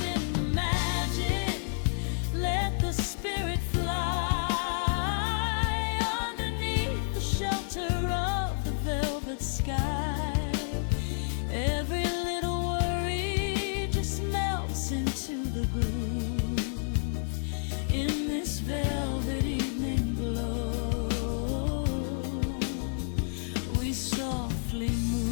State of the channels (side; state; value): right; silent; 58 dB below the other